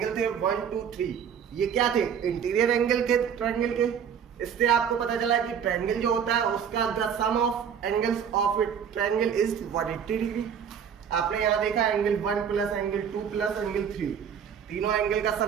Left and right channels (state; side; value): quieter; left; 7.8 dB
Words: थे 1 2 3, ये क्या थे, इंटीरियर एंगल के ट्रायंगल के। इससे आपको पता चला कि ट्रायंगल जो होता है उसका the sum of angles of it triangle is 180 degree. आपने यहाँ देखा angle 1 plus angle 2 plus angle 3, तीनों एंगल का